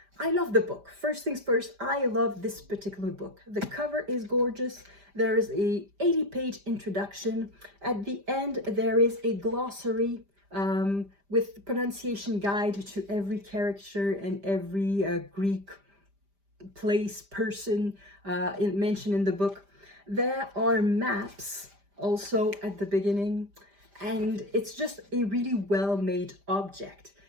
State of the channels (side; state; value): left; late; 5.0 ms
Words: I love the book. First things first, I love this particular book. The cover is gorgeous. There is a 80-page introduction. At the end, there is a glossary with pronunciation guide to every character and every Greek place, person mentioned in the book. There are maps also at the beginning, and it's just a really well-made object.